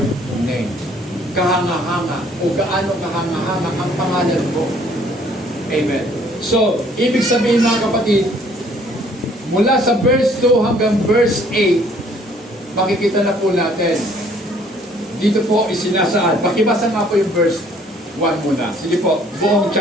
name. Kahanga-hanga o gaano kahanga-hanga ang pangalan mo. Amen. So, ibig sabihin mga kapatid, mula sa verse 2 hanggang verse 8, makikita na po natin. Dito po isinasaad. Pakibasa nga po yung verse 1 muna. Sige po, buong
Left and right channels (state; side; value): normal; both; correlation 0.60